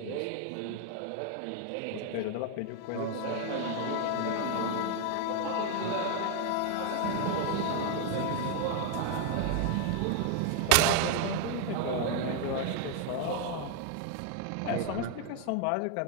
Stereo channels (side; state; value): both; different; correlation 0.01